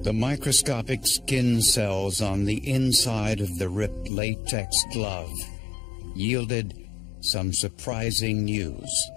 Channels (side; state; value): right; drops out; at 4.1 s